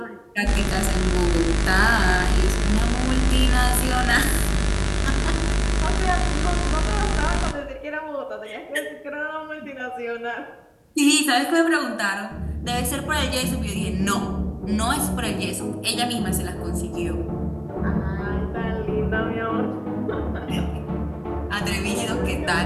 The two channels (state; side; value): identical; both; correlation 1.00